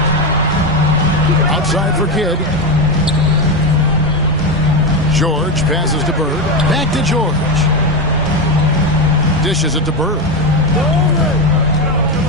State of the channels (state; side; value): normal; both; correlation 0.13